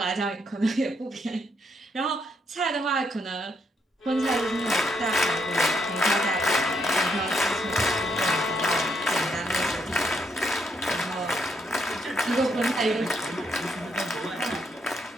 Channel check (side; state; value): both; normal; correlation 0.75